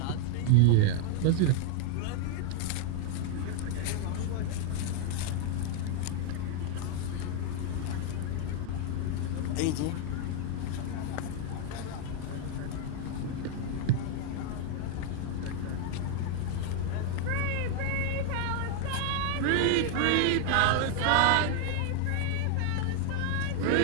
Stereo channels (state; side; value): different; both; correlation 0.00